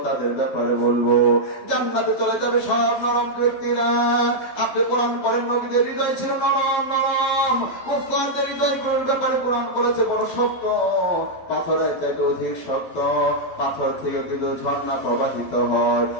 তাদের ব্যাপারে বলবো, জান্নাতে চলে যাবে সব নরম ব্যক্তিরা। আপনি কোরআন পড়েন, নবীদের হৃদয় ছিল নরম নরম, মুসলমানদের হৃদয় ব্যাপারে কোরআন করেছে বড় শক্ত, পাথরের চাইতে অধিক শক্ত। পাথর থেকে কিন্তু ঝর্ণা প্রবাহিত হয়,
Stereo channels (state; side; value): late; right; 11 ms